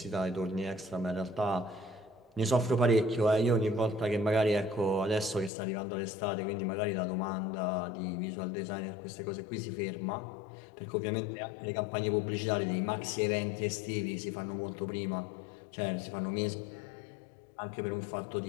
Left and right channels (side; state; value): right; drops out; at 5.5 s